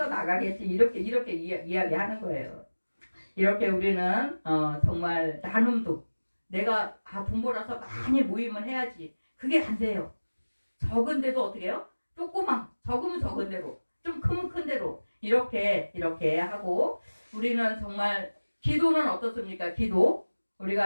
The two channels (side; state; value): both; inverted; correlation -1.00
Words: 이렇게 이야기하는 거예요. 이렇게 우리는 정말 나눔도 내가 돈 벌어서 많이 모임을 해야지 그게 안 돼요. 적은데도 어떻게 해요? 적으면 적은 대로 좀 크면 큰 대로 이렇게 하고 우리는 정말 기도는 어떻습니까? 기도